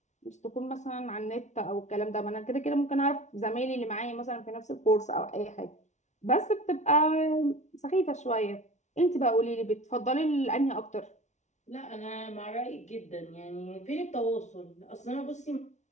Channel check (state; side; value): late; right; 0.33 ms